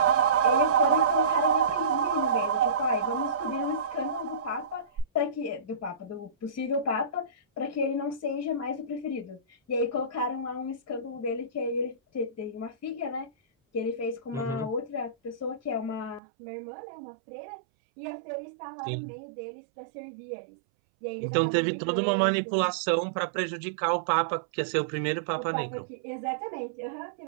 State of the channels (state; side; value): drops out; left; at 16.2 s